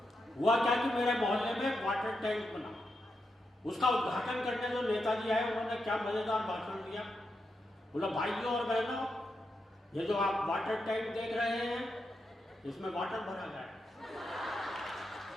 हुआ क्या कि मेरे मोहल्ले में एक वाटर टैंक बना, उसका उद्घाटन करने जो नेताजी आए, उन्होंने क्या मजेदार भाषण दिया। बोला, भाइयों और बहनों, ये जो आप वाटर टैंक देख रहे हैं, इसमें वाटर भरा गया है।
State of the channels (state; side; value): normal; both; correlation 0.85